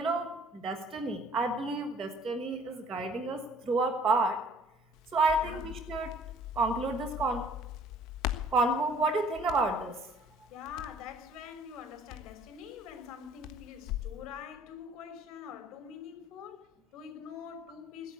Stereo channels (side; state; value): both; normal; correlation 0.55